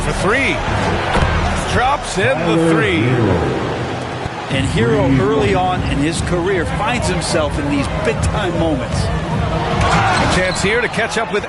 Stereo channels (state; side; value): identical; both; correlation 1.00